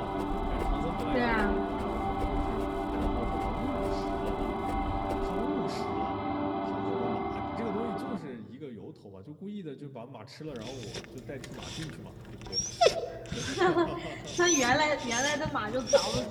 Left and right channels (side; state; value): both; identical; correlation 1.00